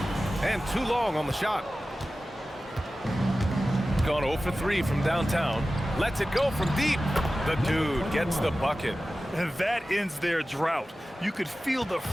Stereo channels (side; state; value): both; normal; correlation 0.95